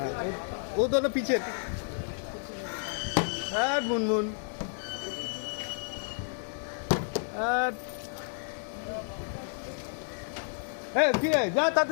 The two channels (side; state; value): right; silent; digital silence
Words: ও दोनों पीछे মুনমুন কি রে যা